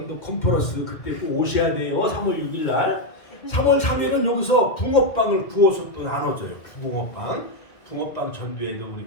컨퍼런스 그때 꼭 오셔야 돼요. 3월 6일 날. 3월 3일은 여기서 붕어빵을 구워서 또 나눠줘요. 붕어빵 전도에도 우리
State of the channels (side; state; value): right; late; 2.1 ms